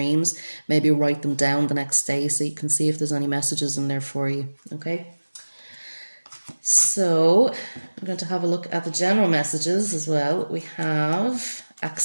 maybe write them down the next day so you can see if there's any messages in there for you, okay? So I'm going to have a look at the general messages as well. We have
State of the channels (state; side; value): inverted; both; correlation -1.00